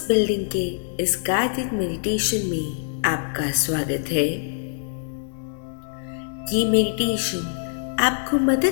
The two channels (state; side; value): silent; right; digital silence